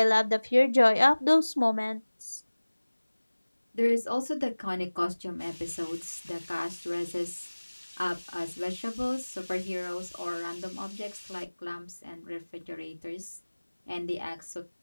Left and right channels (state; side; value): inverted; both; correlation -1.00